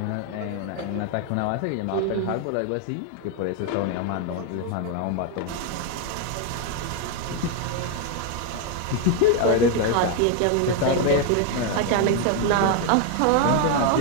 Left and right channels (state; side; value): different; both; correlation 0.01